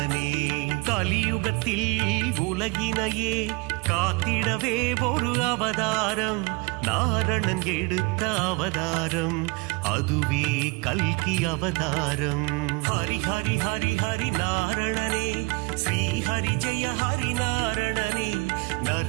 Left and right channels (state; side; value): quieter; left; 27.6 dB